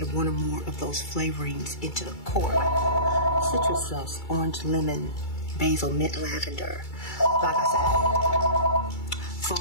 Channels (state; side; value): late; right; 2.3 ms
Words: one or more of those flavorings into the core. Citrus zest, orange, lemon, basil, mint, lavender. Like I said,